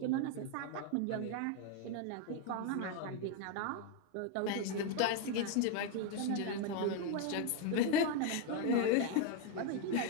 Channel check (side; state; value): both; different; correlation 0.01